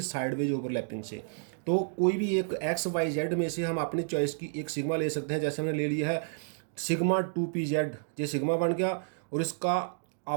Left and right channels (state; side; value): silent; left; digital silence